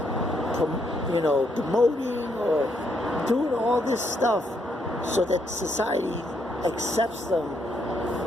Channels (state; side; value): normal; both; correlation 0.75